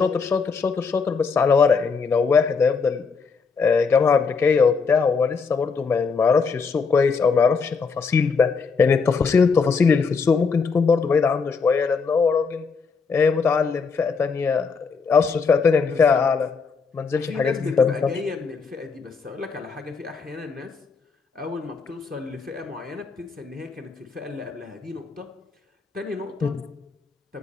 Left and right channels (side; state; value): right; quieter; 5.1 dB